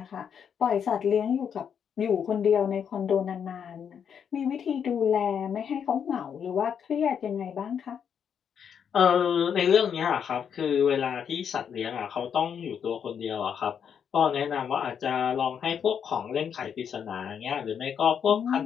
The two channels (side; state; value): right; quieter; 7.7 dB